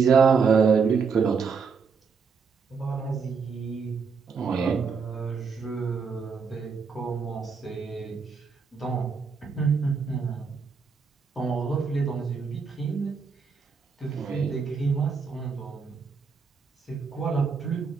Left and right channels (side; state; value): left; quieter; 5.5 dB